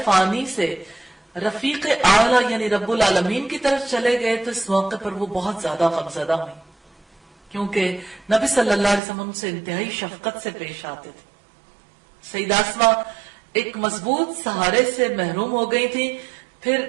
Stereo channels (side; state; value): left; drops out; at 9.0 s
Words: فانی سے رفیق اعلیٰ یعنی رب العالمین کی طرف چلے گئے تو اس موقع پر وہ بہت زیادہ غمزدہ ہوئی، کیونکہ نبی صلی اللہ علیہ وسلم ان سے انتہائی شفقت سے پیش آتے تھے۔ سیدہ اسماء ایک مضبوط سہارے سے محروم ہو گئی تھی۔ پھر